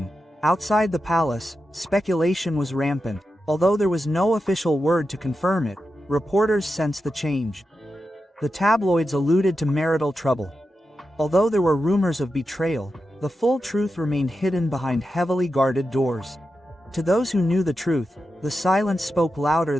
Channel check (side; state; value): both; normal; correlation 0.89